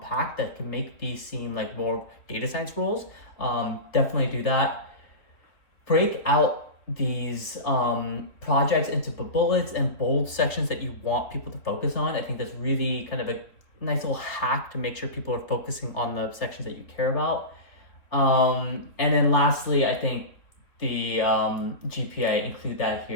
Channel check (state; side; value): late; right; 3.2 ms